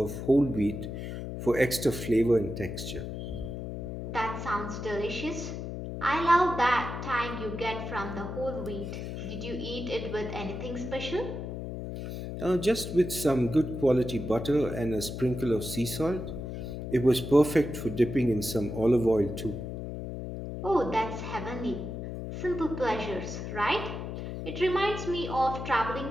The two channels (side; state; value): left; noise; hum, 6 dB below the sound